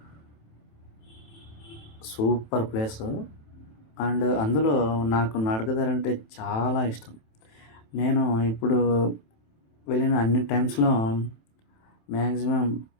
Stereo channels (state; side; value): late; right; 27 ms